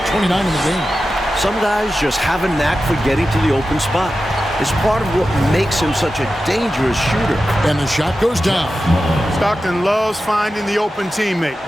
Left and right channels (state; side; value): normal; both; correlation 0.92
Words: 29 in the game. Some guys just have a knack for getting to the open spot. It's part of what makes him such a dangerous shooter. And the shot goes down. Stockton loves finding the open teammate.